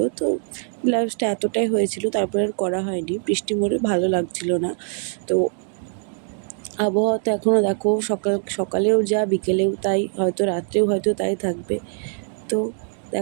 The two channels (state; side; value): silent; left; 59 dB below the other